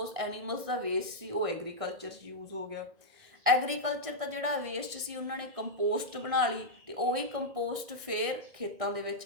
ਐਨੀਮਲਸ ਦਾ ਵੇਸਟ ਸੀ, ਉਹ ਐਗਰੀਕਲਚਰ 'ਚ ਯੂਜ਼ ਹੋ ਗਿਆ। ਐਗਰੀਕਲਚਰ ਦਾ ਜਿਹੜਾ ਵੇਸਟ ਸੀ ਉਹਨਾਂ ਨੇ ਕੰਪੋਸਟ ਬਣਾ ਲਈ ਤੇ ਉਹੀ ਕੰਪੋਸਟ ਫਿਰ ਖੇਤਾਂ ਦੇ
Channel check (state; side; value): late; left; 1.6 ms